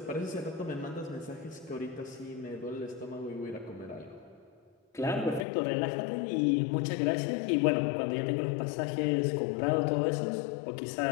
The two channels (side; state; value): right; drops out; at 5.5 s